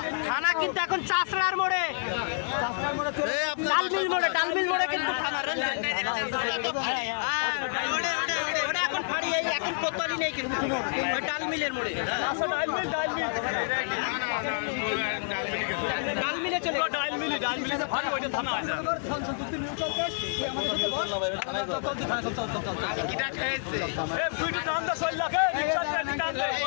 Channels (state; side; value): silent; right; digital silence